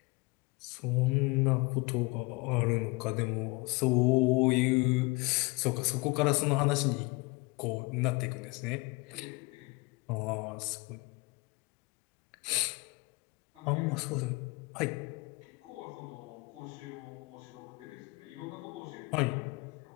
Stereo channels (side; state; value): right; quieter; 26.3 dB